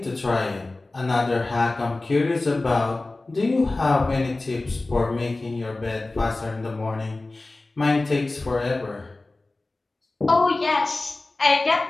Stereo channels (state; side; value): quieter; right; 3.1 dB